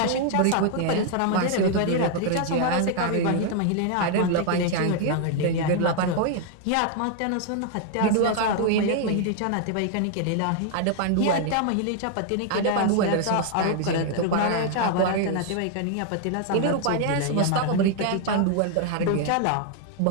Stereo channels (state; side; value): different; both; correlation 0.00